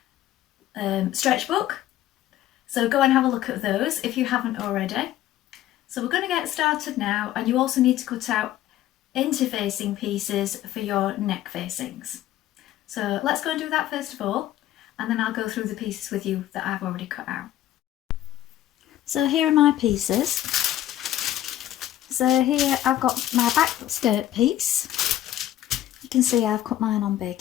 stretch book. So go and have a look at those if you haven't already. So we're going to get started now, and you also need to cut out interfacing pieces for your neck facings. So let's go and do that first of all, and then I'll go through the pieces with you that I've already cut out. So here are my pieces. So here I've got my back skirt piece. You can see I've cut mine on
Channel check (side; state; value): right; quieter; 13.1 dB